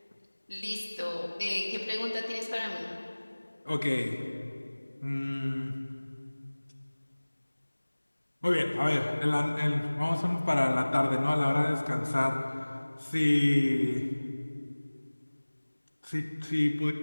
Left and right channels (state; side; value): inverted; both; correlation -1.00